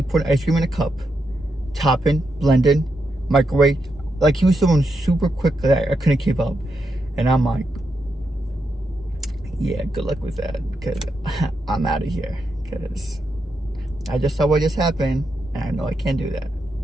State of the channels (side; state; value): both; normal; correlation 0.83